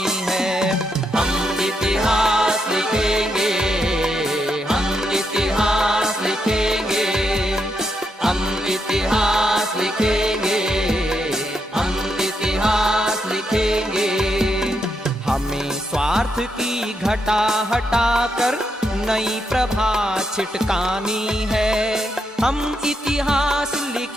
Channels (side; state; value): both; normal; correlation 0.81